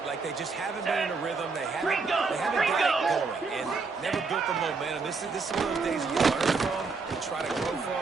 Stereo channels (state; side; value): quieter; left; 4.4 dB